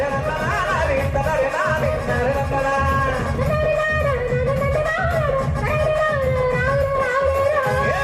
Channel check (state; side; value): identical; both; correlation 1.00